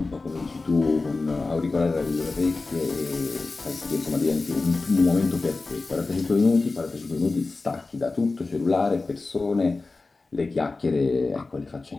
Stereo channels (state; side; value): quieter; right; 3.6 dB